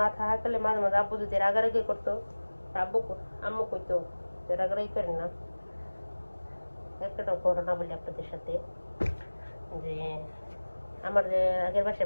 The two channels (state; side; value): inverted; both; correlation -1.00